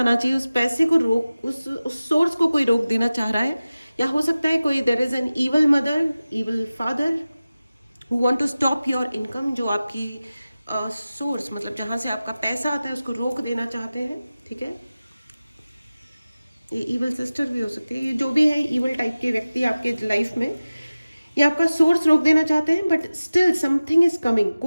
चाहिए, उस पैसे को रोक, उस सोर्स को कोई रोक देना चाह रहा है। या हो सकता है कोई there is an evil mother, evil father who want to stop your income, जो आपकी सोर्स मतलब जहां से आपका पैसा आता है उसको रोक देना चाहते हैं, ठीक है। ये इवल सिस्टर भी हो सकती है। ये जो भी है इवल टाइप के व्यक्ति आपके लाइफ में, ये आपका सोर्स रोक देना चाहते हैं। But still something is coming.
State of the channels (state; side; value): inverted; both; correlation -0.97